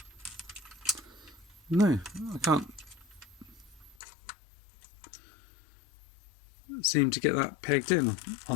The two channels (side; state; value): right; drops out; at 4.0 s